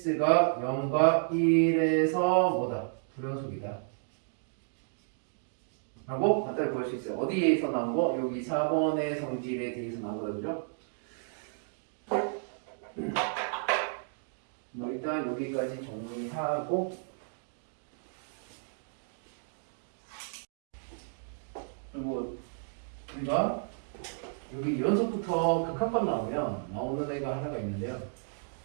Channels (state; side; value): silent; left; digital silence